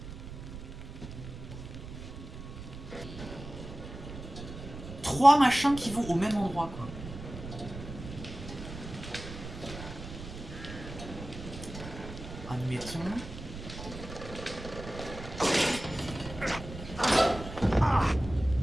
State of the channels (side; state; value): right; noise; rumble, 11 dB below the sound